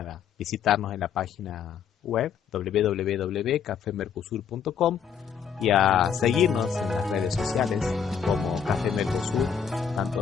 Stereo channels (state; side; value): quieter; right; 7.4 dB